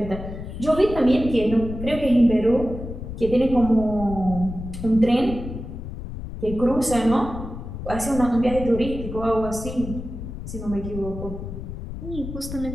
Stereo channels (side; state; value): left; noise; rumble, 9 dB below the sound